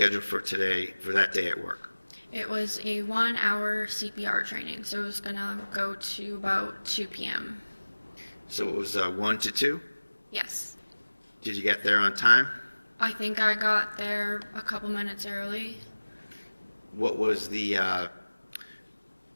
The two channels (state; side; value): inverted; both; correlation -1.00